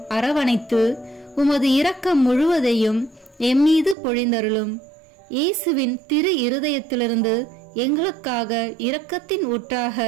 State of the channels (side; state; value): left; drops out; at 4.0 s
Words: அரவணைத்து உமது இரக்கம் முழுவதையும் எம்மீது பொழிந்தருளும். இயேசுவின் திரு இருதயத்திலிருந்து எங்களுக்காக இரக்கத்தின் ஊற்றாக